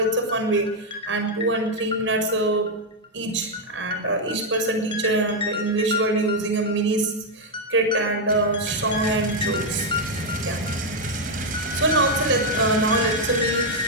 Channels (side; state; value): both; normal; correlation 0.01